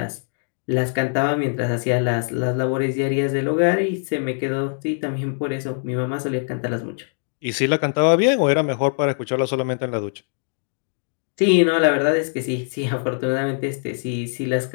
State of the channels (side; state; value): right; silent; 64 dB below the other